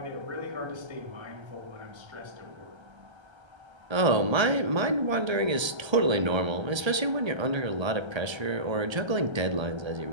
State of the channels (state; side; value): late; left; 1.3 ms